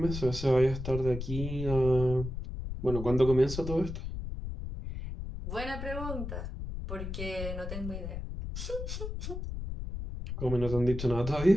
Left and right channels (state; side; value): noise; left; rumble, 6 dB below the sound